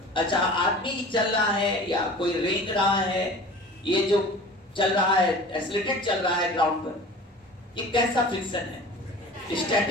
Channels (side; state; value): both; normal; correlation 0.40